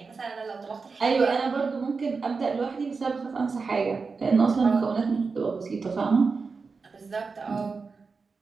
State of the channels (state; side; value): quieter; left; 4.6 dB